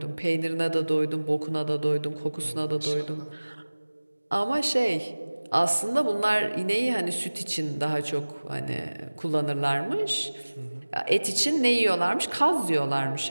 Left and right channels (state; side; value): inverted; both; correlation -1.00